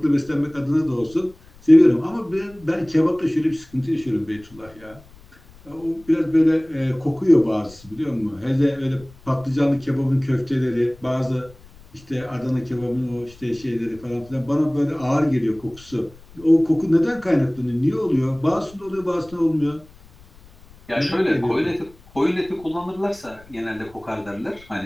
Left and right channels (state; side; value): noise; left; rumble, 24 dB below the sound